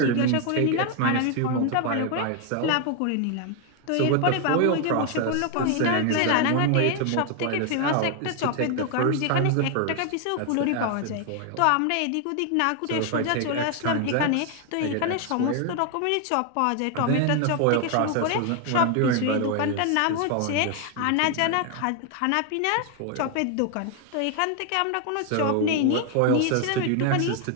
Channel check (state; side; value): different; both; correlation 0.01